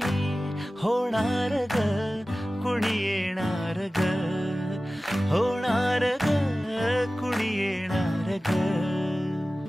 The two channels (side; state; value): both; normal; correlation 0.96